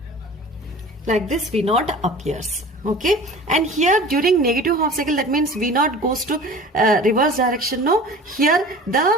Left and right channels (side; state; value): both; normal; correlation 0.40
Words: Like this V naught appears. Okay, and here during negative half cycle, that means V naught goes to reverse direction. No, here the